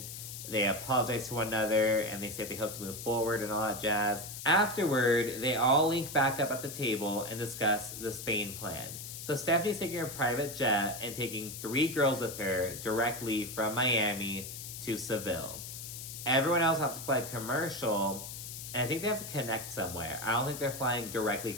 They apologize to one another, and they say they hope to move forward and all that jazz. Afterward, they all link back up at the table and discuss the Spain plan. So Stephanie's taking a private jet and taking 3 girls with her directly from Miami to Seville. Everyone else has to fly commercial, and I think they have to connect somewhere. I don't think they're flying directly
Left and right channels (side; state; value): left; noise; hiss, 9 dB below the sound